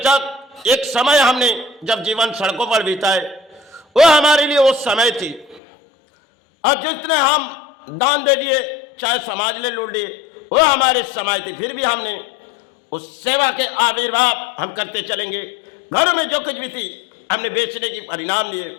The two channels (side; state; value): right; drops out; at 5.6 s